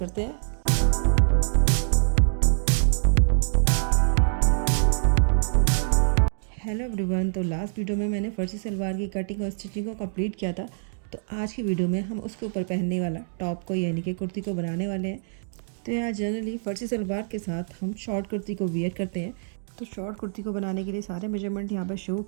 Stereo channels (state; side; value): silent; left; digital silence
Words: हैं। हेलो एवरीवन, तो लास्ट वीडियो में मैंने फर्जी सलवार की कटिंग और स्टिचिंग को कंप्लीट किया था। तो आज की वीडियो में हम उसके ऊपर पहनने वाला टॉप को यानी कि कुर्ती को बनाने वाले हैं। तो यहाँ जनरली फर्जी सलवार के साथ हम शॉर्ट कुर्ती को वियर करते हैं। तो शॉर्ट कुर्ती को बनाने के लिए सारे मेजरमेंट यहाँ पर शो